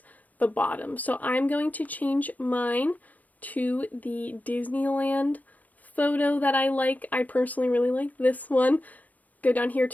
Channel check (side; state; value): right; late; 0.078 ms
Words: the bottom. So I'm going to change mine to the Disneyland photo that I like. I personally really like this one. Go down here